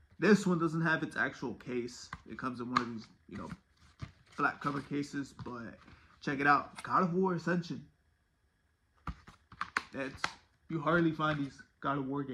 This one doesn't have its actual case. It comes in one of these, you know, flat cover cases. But check it out. God of War Ascension. You hardly find these God of War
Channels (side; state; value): both; identical; correlation 1.00